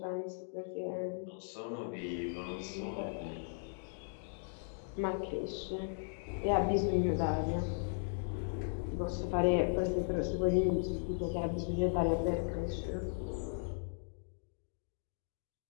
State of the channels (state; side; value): silent; right; digital silence